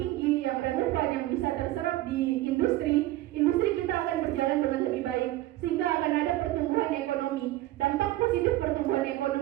yang relevan, yang bisa terserap di industri kita akan berjalan dengan lebih baik, sehingga akan ada pertumbuhan ekonomi. Dampak positif pertumbuhan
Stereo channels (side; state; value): left; quieter; 16.1 dB